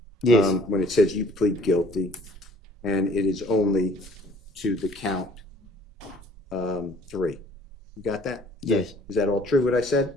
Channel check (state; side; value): normal; both; correlation 0.54